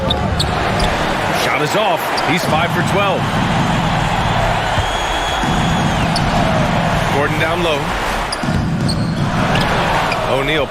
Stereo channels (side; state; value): both; identical; correlation 1.00